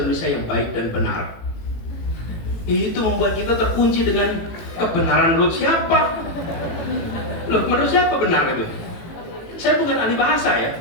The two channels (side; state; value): right; late; 18 ms